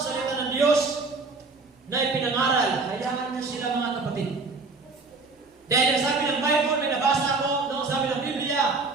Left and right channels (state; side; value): quieter; left; 3.9 dB